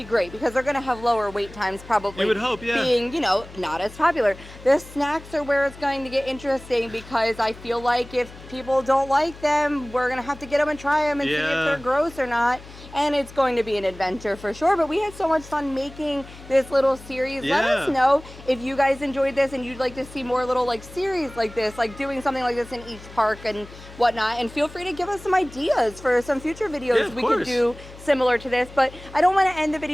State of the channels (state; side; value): noise; left; hum, 18 dB below the sound